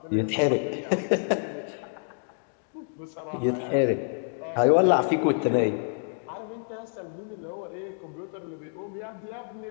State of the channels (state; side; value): silent; right; digital silence